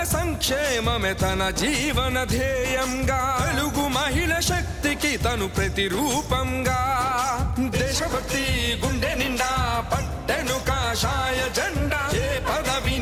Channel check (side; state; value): both; identical; correlation 1.00